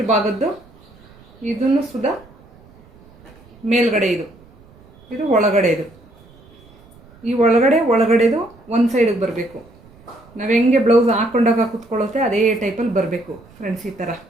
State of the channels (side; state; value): right; noise; rumble, 26 dB below the sound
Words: ಭಾಗದ್ದು, ಇದನ್ನು ಸುದಾ ಮೇಲ್ಗಡೆ, ಇದು ಒಳಗಡೆ, ಈ ಒಳಗಡೆದು ಒಂದು ಸೈಡಿಗೆ ಬರಬೇಕು. ನಾವು ಹೆಂಗೆ ಬ್ಲೌಸ್ ಹಾಕ್ಕೊಂಡಾಗ ಕೂತ್ಕೊಳ್ಳುತ್ತೆ ಅದೇ ಟೈಪಲ್ಲಿ ಬರಬೇಕು ಫ್ರೆಂಡ್ಸ್. ಈ ಥರ